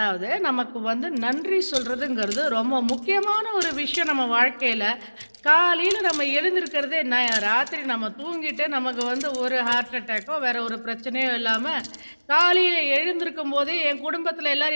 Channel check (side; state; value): both; inverted; correlation -1.00